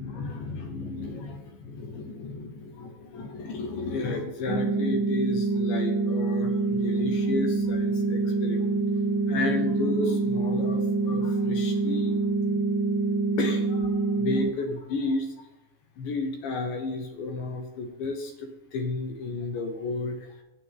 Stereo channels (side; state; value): right; late; 14 ms